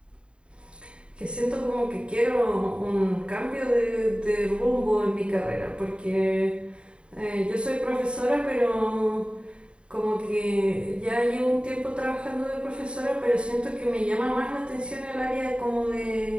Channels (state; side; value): late; left; 0.054 ms